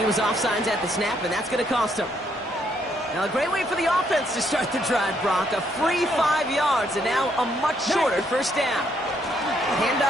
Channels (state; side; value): normal; both; correlation 0.72